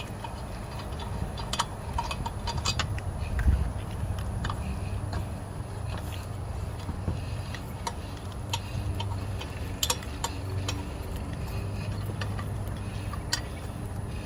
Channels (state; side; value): identical; both; correlation 1.00